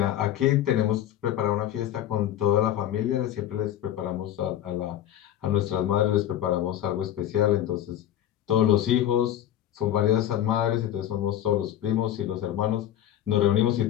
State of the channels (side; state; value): right; quieter; 11.7 dB